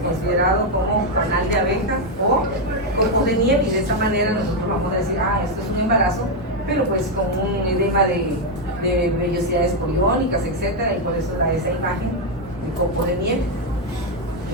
considerado como canal de abeja o copos de nieve, y de esa manera nosotros vamos a decir, esto es un embarazo, pero pues con un edema de vellosidades coriónicas, etcétera, y por eso da esa imagen de copo de nieve.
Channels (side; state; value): both; normal; correlation 0.03